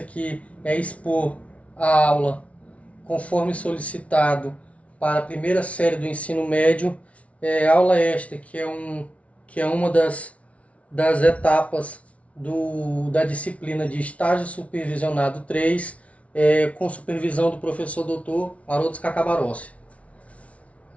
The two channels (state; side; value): late; right; 0.064 ms